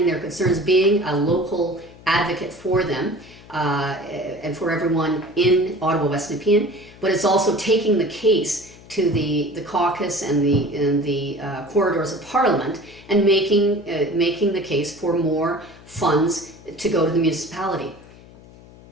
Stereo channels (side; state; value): left; noise; hum, 22 dB below the sound